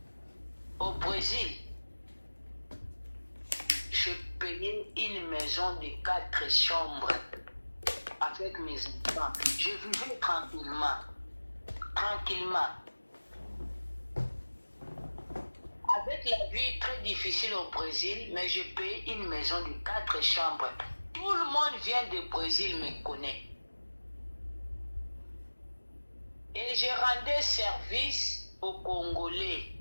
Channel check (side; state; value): both; inverted; correlation -1.00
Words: Au Brésil, je payais une maison de 4 chambres avec mes enfants. Je vivais tranquillement. Tranquillement. Avec la vie très difficile au Brésil, mais je paye une maison de 4 chambres. Tout le monde vient du Brésil me connaît. Et je rendais service aux Congolais